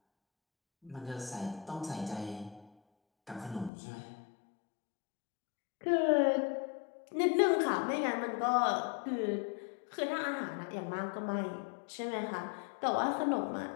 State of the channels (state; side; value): drops out; right; at 3.7 s